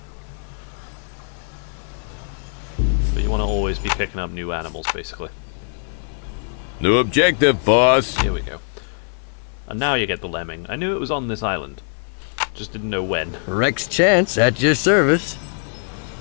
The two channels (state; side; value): silent; right; 64 dB below the other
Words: But you want to always be picking up new animals, basically. New objective, boss. Here we go. And now you get the lemming. I knew it was on this island. Just didn't know when. Rex Chance at your service.